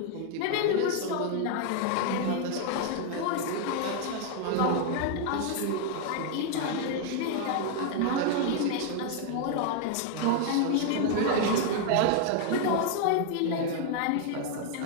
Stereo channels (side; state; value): both; different; correlation 0.00